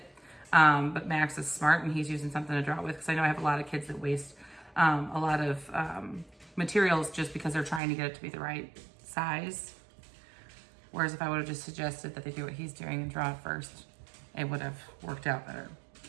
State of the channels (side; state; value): left; drops out; at 7.8 s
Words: But Max is smart and he's using something to draw it with because I know I have a lot of kids that waste a lot of materials just because they're trying to get it to be the right size. Whereas if I would have just suggested that they do what he's doing and draw it first, it would have worked out better.